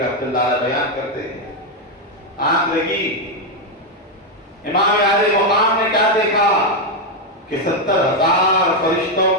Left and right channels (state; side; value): normal; both; correlation 0.04